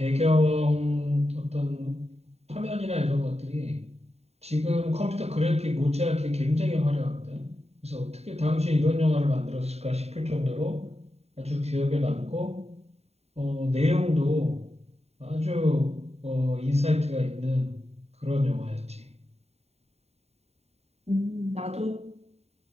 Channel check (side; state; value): left; late; 0.31 ms